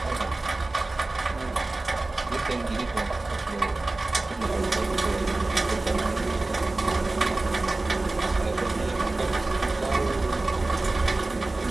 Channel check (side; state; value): left; quieter; 3.1 dB